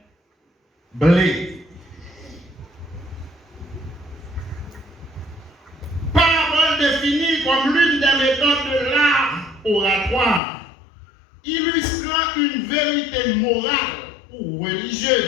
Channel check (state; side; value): drops out; right; at 10.4 s